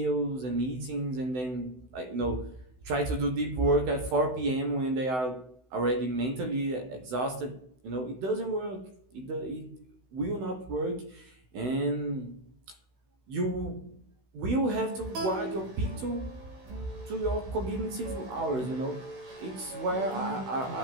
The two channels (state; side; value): late; left; 16 ms